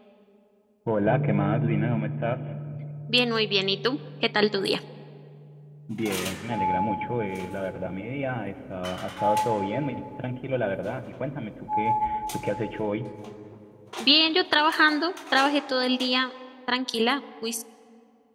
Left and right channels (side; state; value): both; identical; correlation 1.00